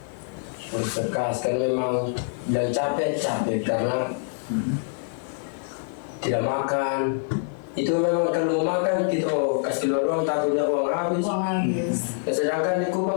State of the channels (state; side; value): silent; right; 58 dB below the other